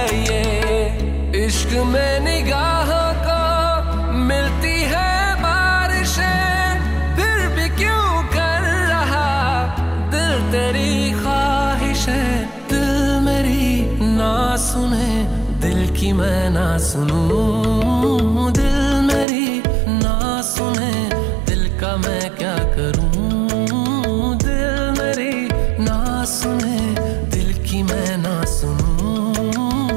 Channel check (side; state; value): left; drops out; at 19.2 s